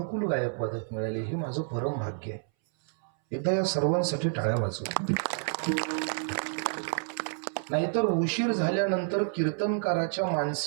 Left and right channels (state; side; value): silent; left; 58 dB below the other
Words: गायक वादक मिळाले, हे माझं परम भाग्य आहे. एकदा या सर्वांसाठी टाळ्या वाजवा. नाहीतर उशीर झाल्यानंतर कीर्तनकाराच्या